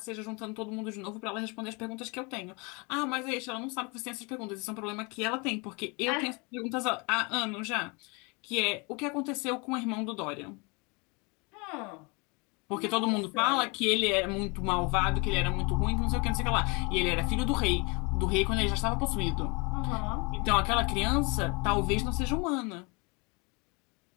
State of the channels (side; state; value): right; quieter; 29.9 dB